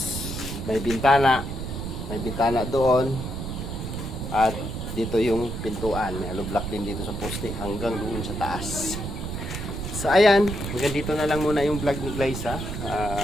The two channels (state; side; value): noise; right; rumble, 6 dB below the sound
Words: may bintana doon at dito yung pintuan. May hollow block din dito sa poste hanggang doon sa taas. So ayan, hanggang dito na lang muna yung vlog ni Glyza.